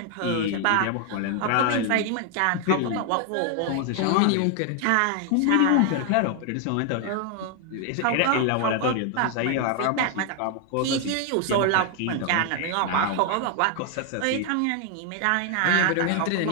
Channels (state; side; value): different; both; correlation 0.00